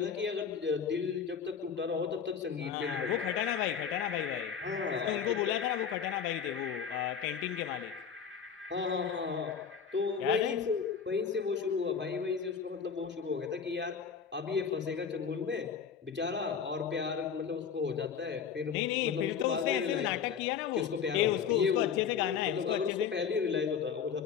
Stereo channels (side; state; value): right; quieter; 7.0 dB